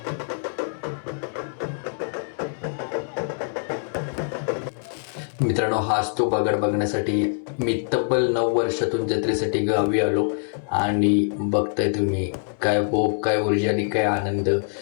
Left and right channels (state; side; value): silent; right; 62 dB below the other